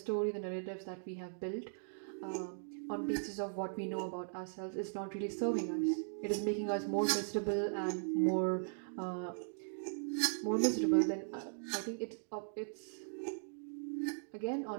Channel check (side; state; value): left; silent; digital silence